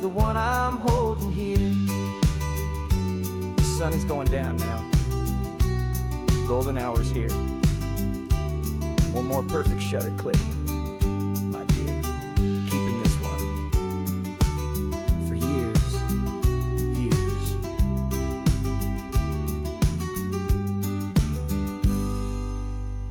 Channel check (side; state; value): both; identical; correlation 1.00